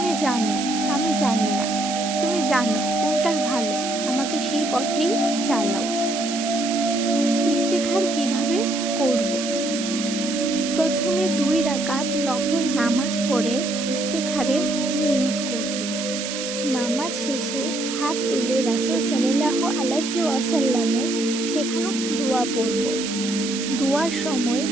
জানো আমি জানি না, তুমি জানো কোনটা ভালো, আমাকে সেই পথেই চালাও। ইস্তেখার কিভাবে করব? প্রথমে 2 রাকাত নফল নামাজ পড়ে ইস্তেখারের নিয়ত করব। নামাজ শেষে হাত তুলে রাসূল সাল্লাল্লাহু আলাইহি ওয়াসাল্লামে শেখানো দোয়া পড়ব। দোয়ার সময়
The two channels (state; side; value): noise; right; hiss, 6 dB below the sound